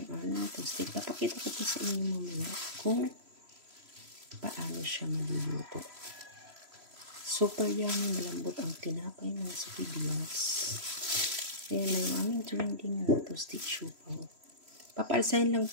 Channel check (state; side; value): late; left; 3.0 ms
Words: aming toasted. Papakita ko po sa inyo mamaya kung paano siya maluluto. Super yummy, malambot ang tinapay mga sa Reveals. Ayan na yung aming trending na toasted siopaw. Papaalsahin lang